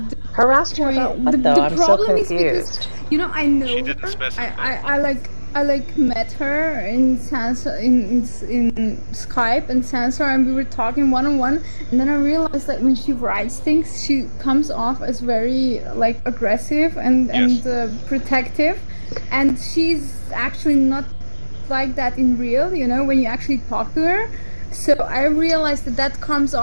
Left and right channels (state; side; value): inverted; both; correlation -1.00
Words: her about what though? I'm so confused. Because, you know, I know she didn't specify. I met her in Sansar in Skype and Sansar, and we were talking one-on-one, and then I realized that when she writes things, she comes off as very like aggressive and protective, and she's actually not like that in real. You know, when you actually talk to her. So I realized that comes